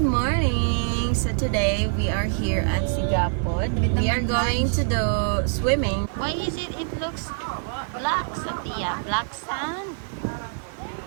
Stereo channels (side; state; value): left; silent; 62 dB below the other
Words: morning! So today we are here at Sigapod. We are going to do swimming. Why is it looks black, Sophia? Black sand?